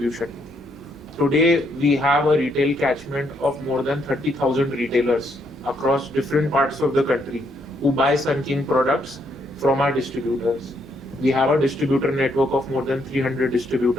Today, we have a retail catchment of more than 30,000 retailers across different parts of the country who buy Sun King products from our distributors. We have a distributor network of more than 300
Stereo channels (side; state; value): both; normal; correlation 0.74